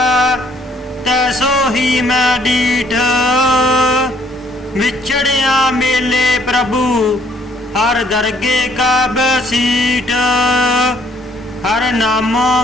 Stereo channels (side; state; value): both; normal; correlation 0.65